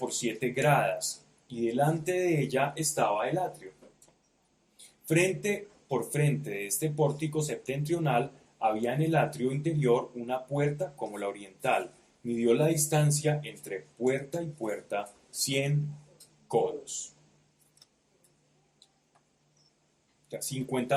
7 gradas, y delante de ella estaba el atrio. Por frente de este pórtico septentrional había en el atrio interior una puerta como la oriental. Midió la distancia entre puerta y puerta 100 codos. O sea,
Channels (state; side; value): identical; both; correlation 1.00